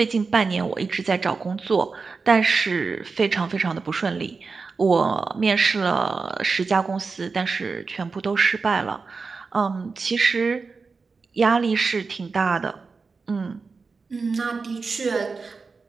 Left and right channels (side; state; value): left; quieter; 4.5 dB